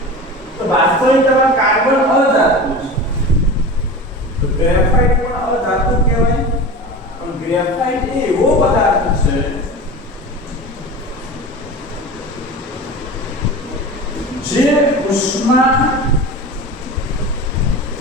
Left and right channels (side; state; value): both; normal; correlation 0.32